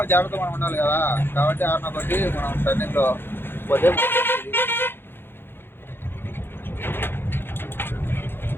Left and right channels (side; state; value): right; late; 0.10 ms